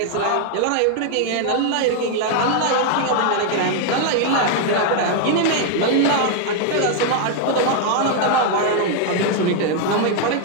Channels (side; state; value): both; different; correlation 0.00